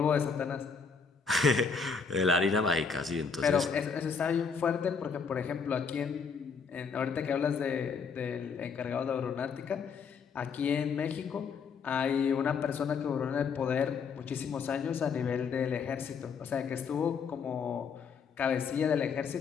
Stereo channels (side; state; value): right; quieter; 5.7 dB